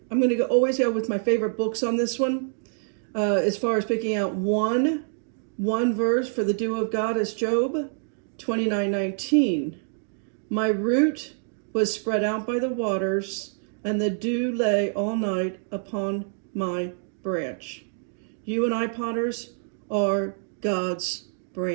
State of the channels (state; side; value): silent; left; digital silence